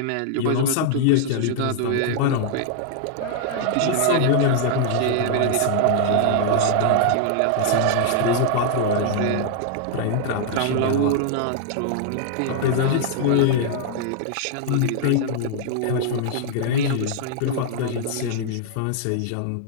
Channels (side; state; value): both; different; correlation 0.00